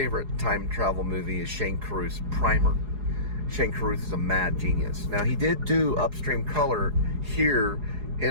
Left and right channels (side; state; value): left; late; 4.8 ms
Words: time travel movie is Shane Carruth's Primer. Shane Carruth is a mad genius. Now, he did do Upstream Color here